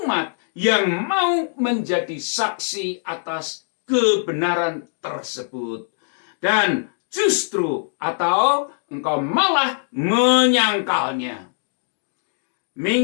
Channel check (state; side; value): silent; right; digital silence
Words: yang mau menjadi saksi atas kebenaran tersebut, dan justru atau engkau malah menyangkalnya?